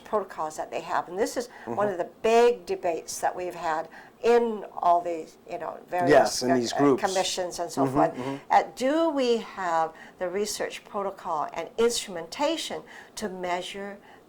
protocols that they have. And this is one of the big debates that we've had in all these, various in these groups. Commissions and so forth. Do we have the research protocol and instrumentation to measure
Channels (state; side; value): identical; both; correlation 1.00